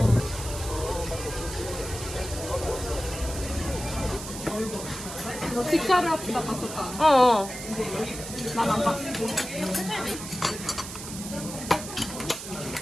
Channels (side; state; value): right; noise; hiss, 9 dB below the sound